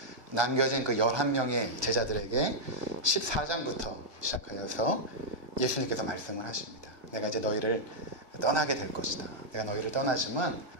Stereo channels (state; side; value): late; left; 1.4 ms